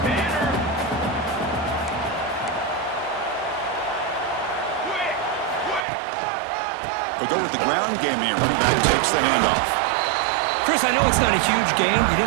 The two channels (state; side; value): drops out; left; at 5.9 s